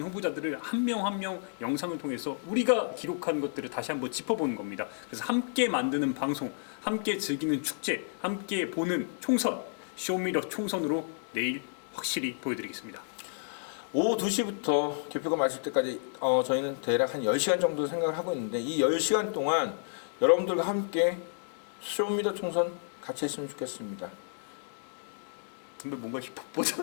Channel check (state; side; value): silent; right; digital silence